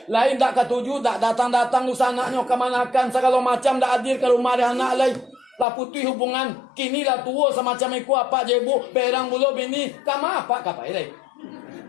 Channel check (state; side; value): drops out; right; at 5.7 s